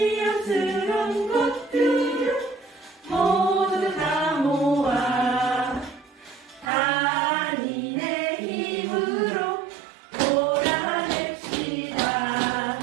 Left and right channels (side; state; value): left; drops out; at 6.7 s